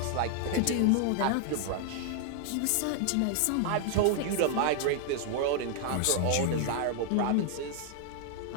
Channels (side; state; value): both; different; correlation 0.00